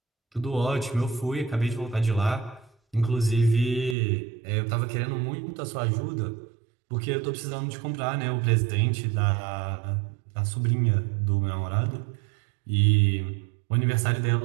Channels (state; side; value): drops out; left; at 4.0 s